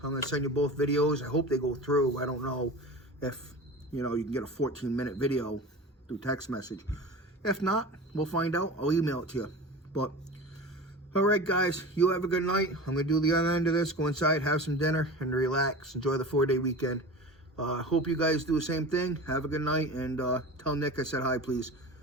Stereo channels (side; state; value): both; normal; correlation 0.33